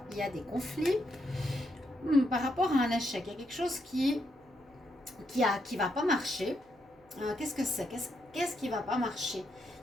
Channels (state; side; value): noise; right; hum, 30 dB below the sound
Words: il y a des conflits. Par rapport à un échec, il y a quelque chose qui va pas marcher. Qu'est-ce que c'est? Qu'est-ce qui va pas marcher?